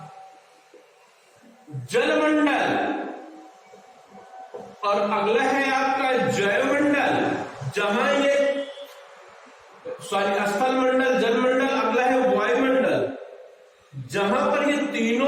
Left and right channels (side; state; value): both; identical; correlation 1.00